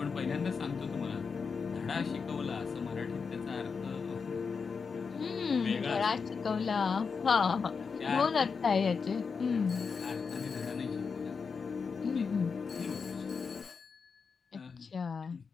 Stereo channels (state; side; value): quieter; right; 5.4 dB